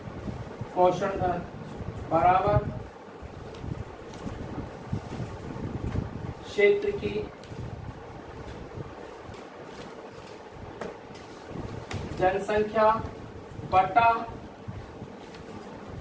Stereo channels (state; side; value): identical; both; correlation 1.00